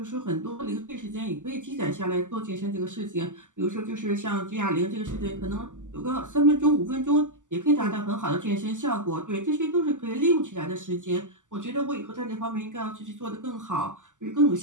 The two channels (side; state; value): left; late; 0.87 ms